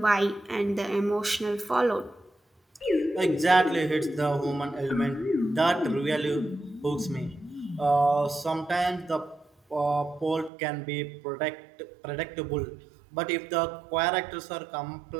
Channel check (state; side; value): drops out; left; at 10.5 s